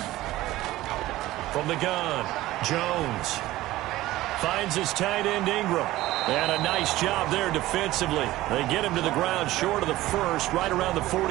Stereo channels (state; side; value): quieter; left; 16.5 dB